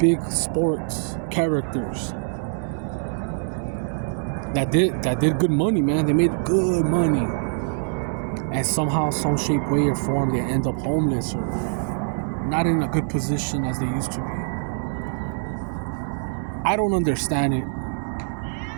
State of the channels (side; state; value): left; silent; digital silence